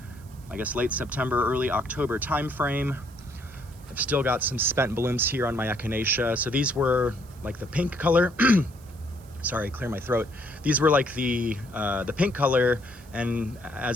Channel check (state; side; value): noise; right; hiss, 26 dB below the sound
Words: I guess, late September, early October time frame. I've still got some spent blooms here on my echinacea. So these were like the pink color. Sorry, clear my throat. These were like the pink color, and